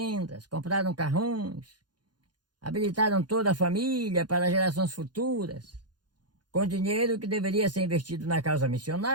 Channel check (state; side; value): late; left; 0.70 ms